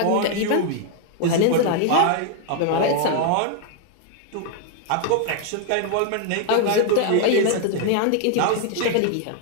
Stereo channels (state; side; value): different; both; correlation 0.00